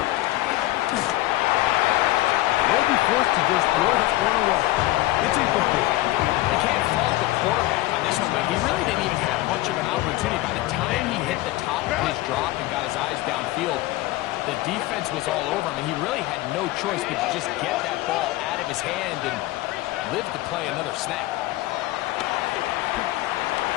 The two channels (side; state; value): right; quieter; 17.5 dB